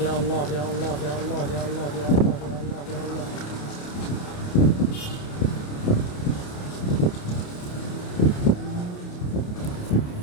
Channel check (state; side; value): late; right; 28 ms